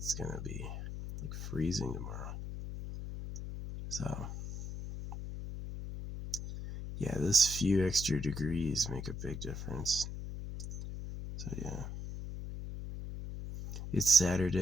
gonna be like freezing tomorrow. So yeah, this few extra degrees make a big difference. So yeah. It's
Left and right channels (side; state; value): left; noise; hum, 7 dB below the sound